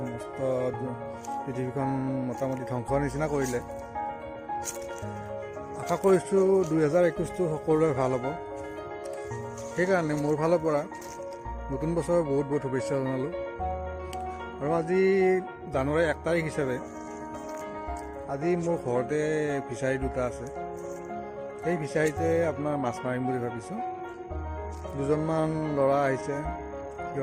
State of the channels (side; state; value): both; identical; correlation 1.00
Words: সমস্ত পৃথিৱীখন মোটামুটি ধ্বংসৰ নিচিনা কৰিলে। আশা কৰিছোঁ 2021টো সকলোৰে ভাল হ'ব। সেইকাৰণে মোৰ ফালৰ পৰা নতুন বছৰৰ বহুত বহুত শুভেচ্ছা জনালোঁ। আৰু আজি জানুৱাৰী 1 তাৰিখ হিচাপে আজি মোৰ ঘৰতে ফিচাৰী দুটা আছে। সেই ফিচাৰীতে আপোনাৰ মাছ মাৰিম বুলি ভাবিছোঁ। দুজনমান ল'ৰা আহিছে,